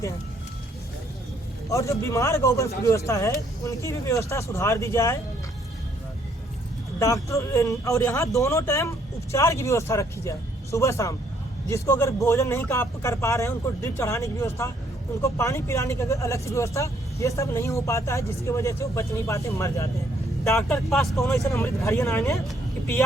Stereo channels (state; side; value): normal; both; correlation 0.68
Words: हैं। और जो बीमार गौवंश की व्यवस्था है उनकी भी व्यवस्था सुधार दी जाए, डॉक्टर, और यहाँ दोनों टाइम उपचार की व्यवस्था रखी जाए, सुबह शाम, जिसको अगर भोजन नहीं कर पा रहे हैं उनको ड्रिप चढ़ाने की व्यवस्था, उनको पानी पिलाने की अलग से व्यवस्था, ये सब नहीं हो पाता है, जिसकी वजह से वो बच नहीं पाते, मर जाते हैं। डॉक्टर के पास कौन ऐसा अमृत घड़ियन आने कि